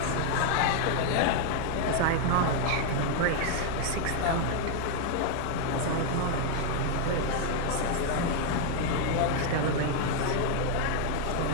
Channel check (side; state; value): both; different; correlation 0.00